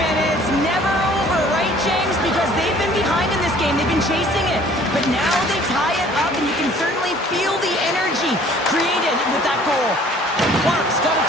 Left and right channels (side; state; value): both; normal; correlation 0.54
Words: it's never over, right, James? Because they've been behind in this game. They've been chasing it. But now they tie it up, and you can certainly feel the energy created with that goal. Clark's got it